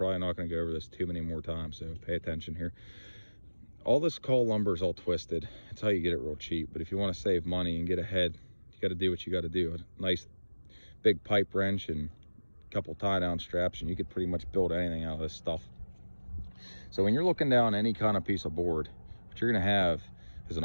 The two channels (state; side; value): inverted; both; correlation -1.00